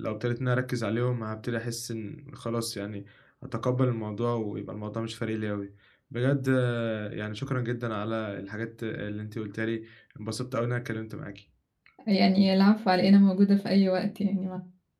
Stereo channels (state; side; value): identical; both; correlation 1.00